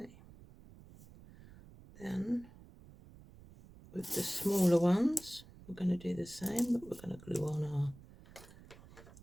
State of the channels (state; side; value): noise; right; rumble, 20 dB below the sound